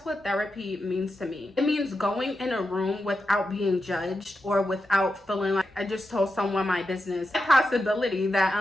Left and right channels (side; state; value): both; normal; correlation 0.88